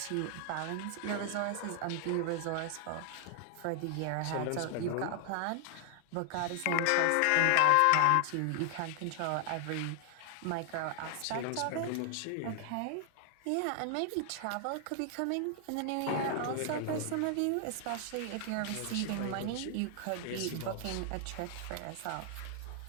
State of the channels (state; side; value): different; both; correlation 0.00